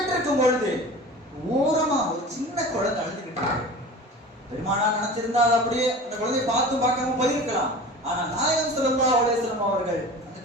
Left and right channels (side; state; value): both; normal; correlation 0.37